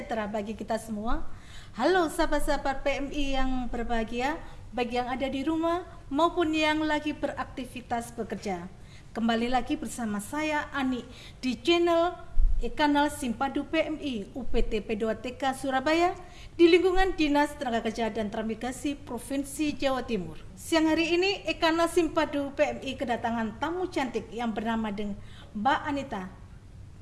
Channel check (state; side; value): identical; both; correlation 1.00